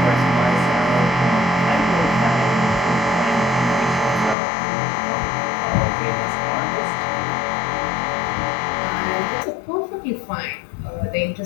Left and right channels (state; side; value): drops out; right; at 4.4 s